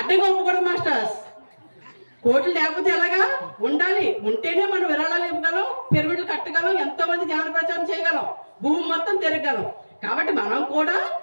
ఒప్పుకోవడం మాస్టర్స్. కోట్లు లేకపోతే ఎలాగా, ఉండాలి, ఉంటేనే మనం విరాళాలు ఇవ్వగలం, పిరమిడ్లు కట్టగలం, ఎంతో మంది జ్ఞాన ప్రచారం చేయగలం, భూమి మొత్తం తిరగగలం. కాబట్టి మనం కూడా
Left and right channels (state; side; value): inverted; both; correlation -1.00